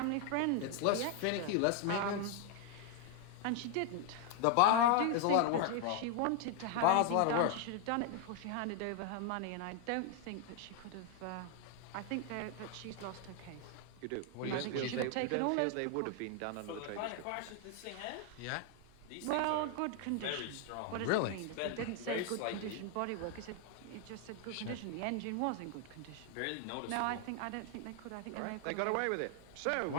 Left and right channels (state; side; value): different; both; correlation 0.00